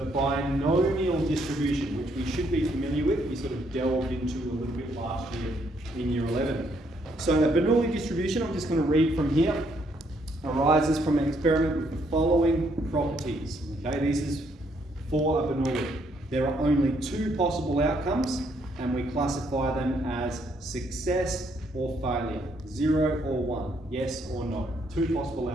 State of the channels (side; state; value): both; normal; correlation 0.71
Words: binomial distribution, which we should be familiar with. We sort of delved into a little bit last year in Year 11. So the Bernoulli distribution, I'm just going to read from here, arises from an experiment with the following properties. Okay, this is for a Bernoulli. There are only two possible outcomes, and we classify them as success or failure, 0 or 1, yes or no. Two possible